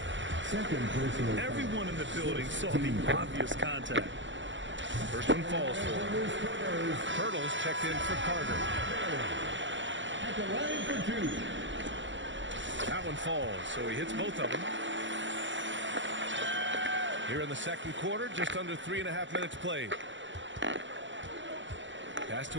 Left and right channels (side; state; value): left; late; 0.54 ms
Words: 2nd personal foul. Everyone in the building saw the obvious contact. First one falls for him. Hurdles checked in for Carter. At the line for 2. That one falls, so he hits both of them. Here in the 2nd quarter, just under 3.5 minutes played. Pass